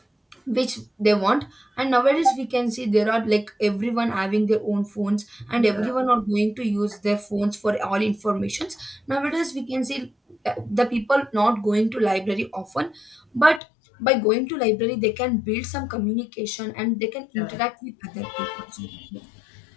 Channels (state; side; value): drops out; right; at 13.6 s